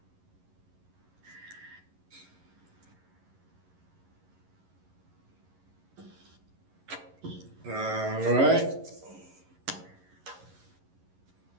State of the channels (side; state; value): left; late; 11 ms